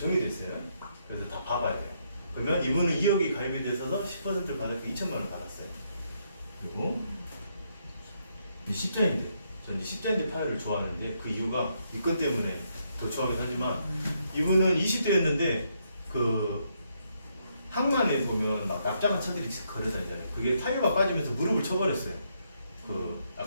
있어요. 그래서 다 봐봐야 돼요. 그러면 이분은 2억이 가입이 돼서 10%를 받았고 2천만 원을 받았어요. 그리고 이 십자인대, 전 이제 십자인대 파열을 좋아하는데 그 이유가 이 건 때문에 더 좋아하긴 하지만, 이분은 20대였는데 그 항만에 보면 막 납작한 차들이 걸어다니잖아요. 그게 타이어가 빠지면서 무릎을 쳐버렸어요. 그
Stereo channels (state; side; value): inverted; both; correlation -0.75